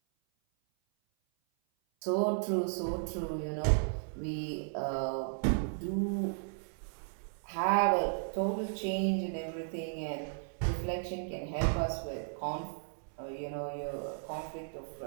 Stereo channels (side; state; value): left; silent; 55 dB below the other